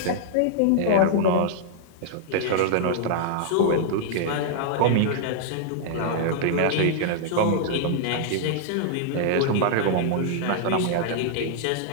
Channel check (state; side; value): different; both; correlation -0.01